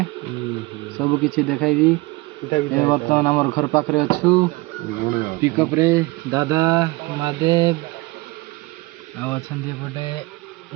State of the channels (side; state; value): left; quieter; 22.5 dB